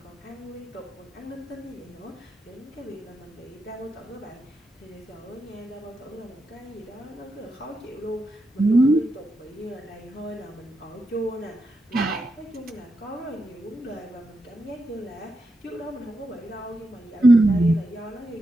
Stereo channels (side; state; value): both; normal; correlation 0.85